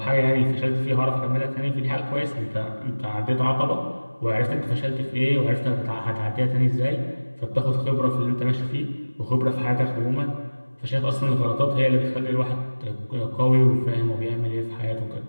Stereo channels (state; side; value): inverted; both; correlation -1.00